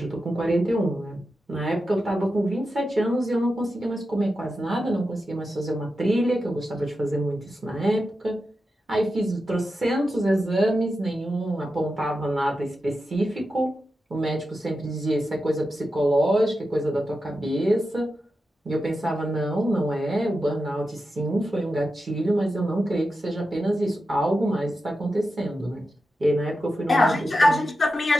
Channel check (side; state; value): both; normal; correlation 0.90